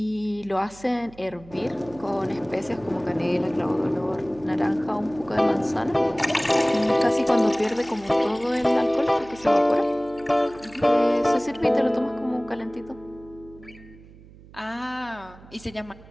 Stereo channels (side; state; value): right; noise; hum, 21 dB below the sound